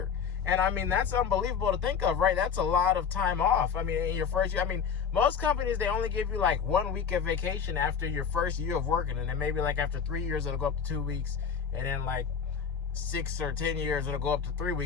And I mean, that's unbelievable to think of, right? That's a lot of time off. I mean, in your first year, I mean, most companies, they only give you like 1 week of vacation after your first year of working. And then maybe like after 3 years, it'll go up to 2 weeks. And then like 6 or 10 years, it'll go up to 3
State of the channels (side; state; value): right; quieter; 6.8 dB